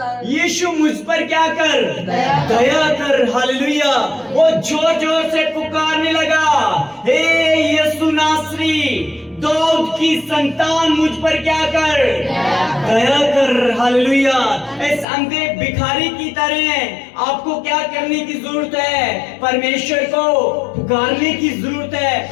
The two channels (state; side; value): drops out; right; at 15.1 s